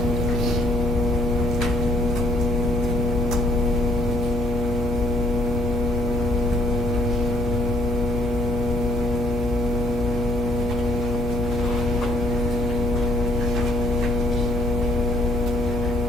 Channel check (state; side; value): normal; both; correlation 0.63